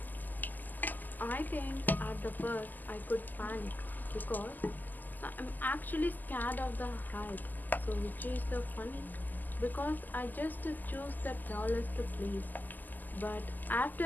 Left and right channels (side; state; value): right; late; 0.085 ms